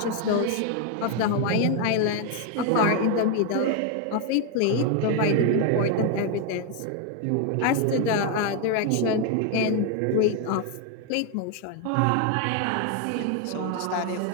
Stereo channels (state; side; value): different; both; correlation 0.01